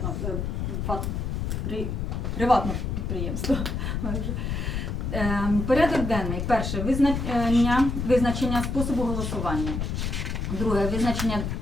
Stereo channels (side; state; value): left; noise; rumble, 2 dB below the sound